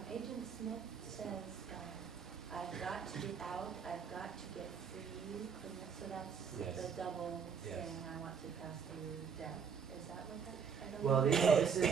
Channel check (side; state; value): left; quieter; 6.5 dB